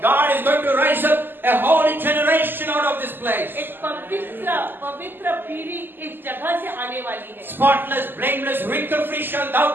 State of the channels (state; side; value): late; left; 0.095 ms